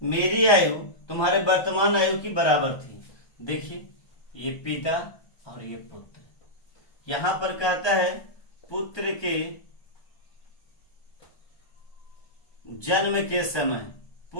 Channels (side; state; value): right; late; 1.3 ms